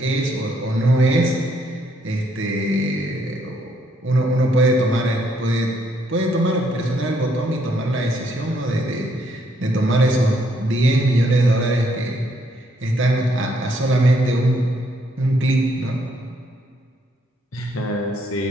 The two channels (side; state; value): both; normal; correlation 0.71